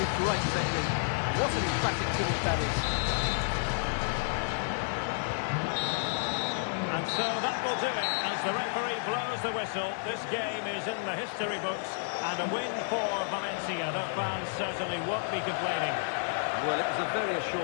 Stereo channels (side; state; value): right; silent; digital silence